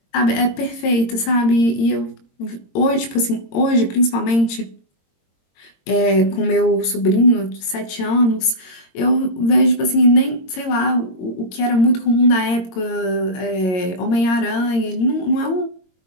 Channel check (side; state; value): right; late; 22 ms